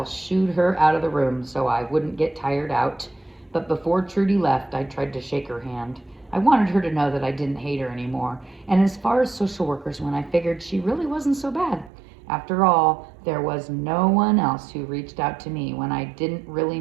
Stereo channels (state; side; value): drops out; left; at 11.9 s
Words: shooed her out of the room so I wouldn't get tired out. But before Trudy left, I tried to shake her hand. I wanted her to know that I didn't hate her anymore. And as far as social workers went, I figured she really wasn't so bad. After all, there was no one else who reached out to me when I didn't really